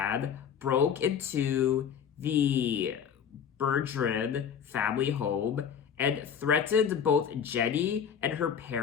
broke into the Bergeron family home and threatened both Jenny and her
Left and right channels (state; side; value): quieter; right; 7.7 dB